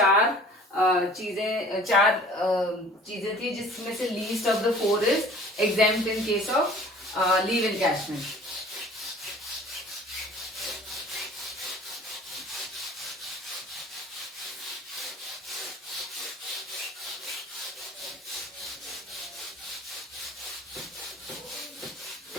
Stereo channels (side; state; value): both; normal; correlation 0.48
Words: चार चीजें थी, जिसमें से least of the 4 is exempt in case of leave encashment.